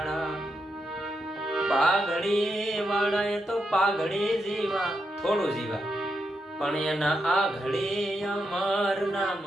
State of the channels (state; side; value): normal; both; correlation 0.84